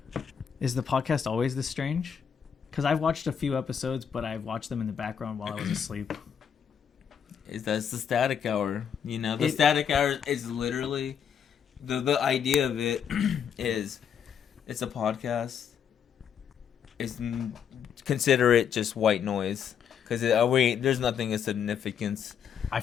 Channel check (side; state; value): right; quieter; 7.9 dB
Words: Is the podcast always this strange? Because I've watched a few episodes, but I've watched them in the background while I was asleep. That's the static hour. You know, the static hour is literally the idea of it is it's a podcast. Consider it just white noise because there's nothing of significance. I